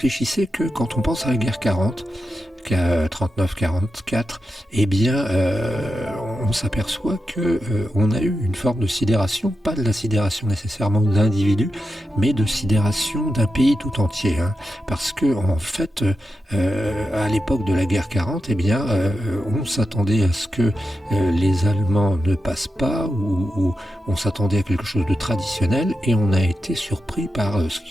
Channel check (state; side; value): normal; both; correlation 0.89